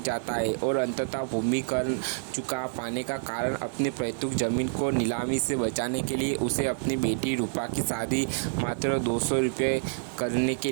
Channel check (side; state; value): left; silent; 58 dB below the other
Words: है और अंततः भूमि कर चुका पाने का कारण अपनी पैतृक जमीन को नीलामी से बचाने के लिए उसे अपनी बेटी रूपा की शादी मात्र 200 रुपये करने के